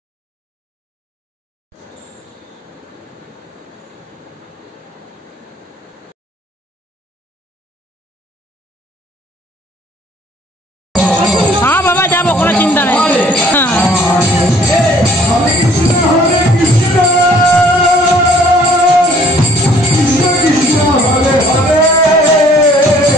हाँ बाबा जाबो कोनो चिंता नहीं। हाँ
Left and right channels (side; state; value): both; normal; correlation 0.56